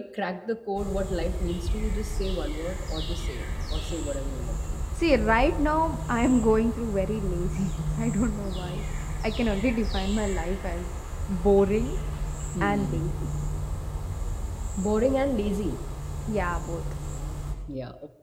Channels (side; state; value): both; identical; correlation 1.00